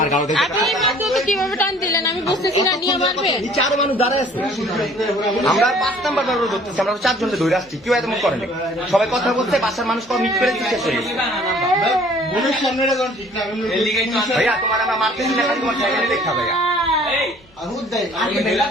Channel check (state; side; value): normal; both; correlation 0.54